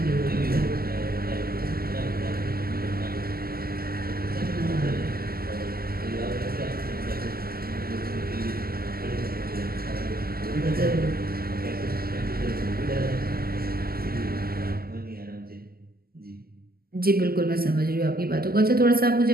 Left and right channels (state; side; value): late; left; 0.44 ms